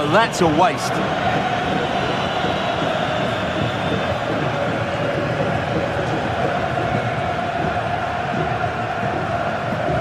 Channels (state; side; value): identical; both; correlation 1.00